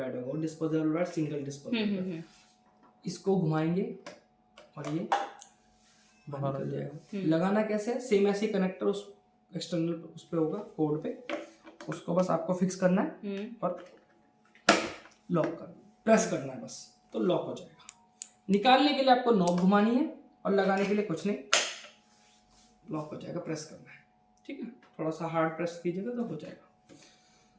होगा। Disposable pad single disposable. इसको घुमाएंगे और ये बाहर निकल जाएगा। लगाना कैसे है? सेम ऐसे कनेक्टर उस एक्सटर्नल उस पे होगा, कोड पे। उसको बस आपको फिक्स करना है और लॉक करना, प्रेस करना है बस, तो लॉक हो जाएगा। निकालने के लिए आपको नॉब घुमानी है और लगाने के लिए कुछ नहीं, लॉक हो जाएगा। प्रेस करना है, ठीक है। थोड़ा सा हार्ड प्रेस कीजिएगा तो हो जाएगा।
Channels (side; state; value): both; identical; correlation 1.00